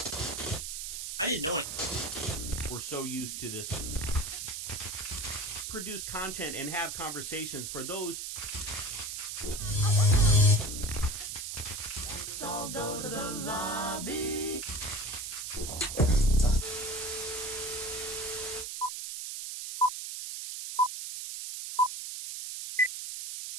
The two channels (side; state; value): right; noise; hiss, 6 dB below the sound